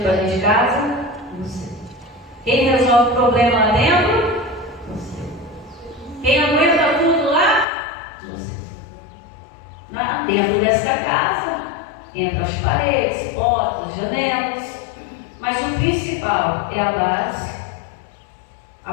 para dentro de casa? Você. Quem resolve o problema lá dentro? Você. Quem aguenta tudo lá? Você. Dentro dessa casa, entre as paredes, portas, janelas. Mas o principal é a base,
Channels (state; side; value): drops out; right; at 7.7 s